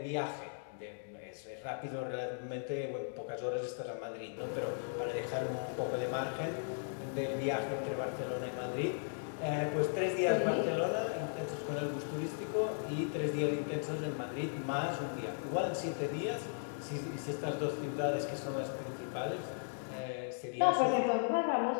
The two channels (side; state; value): right; silent; digital silence